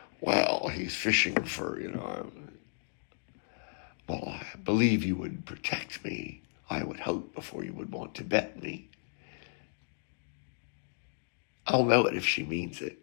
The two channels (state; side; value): silent; right; digital silence